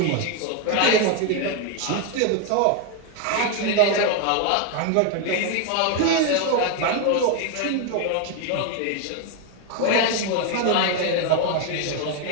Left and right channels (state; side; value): different; both; correlation 0.01